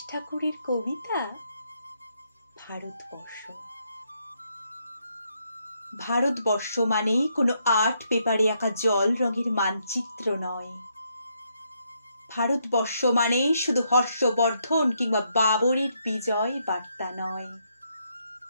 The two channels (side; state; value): both; inverted; correlation -0.76